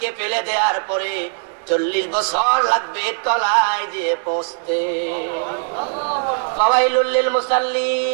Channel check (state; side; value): silent; left; digital silence